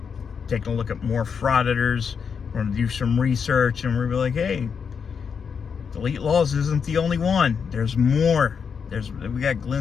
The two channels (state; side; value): quieter; right; 6.4 dB